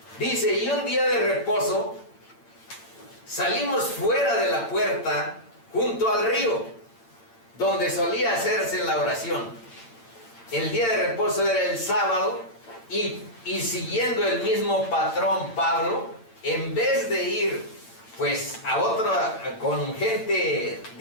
Dice: y un día de reposo salimos fuera de la puerta junto al río donde solía hacerse la oración. El día de reposo era el sábado, y siguiendo el mismo patrón, Pablo, en vez de ir pues a otra con gente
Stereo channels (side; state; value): right; late; 8.8 ms